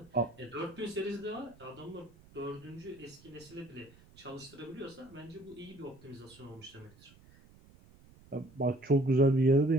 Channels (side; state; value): right; noise; rumble, 25 dB below the sound